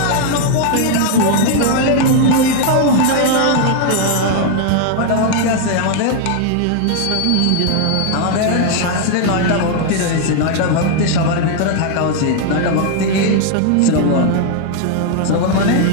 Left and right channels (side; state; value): both; different; correlation 0.00